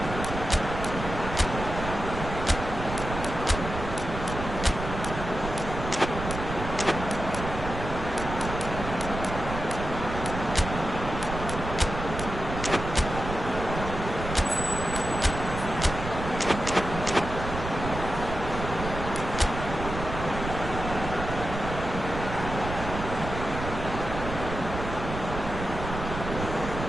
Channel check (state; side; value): noise; right; rumble, 6 dB below the sound